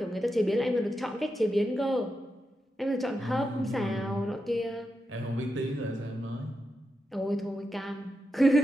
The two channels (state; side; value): normal; both; correlation 0.87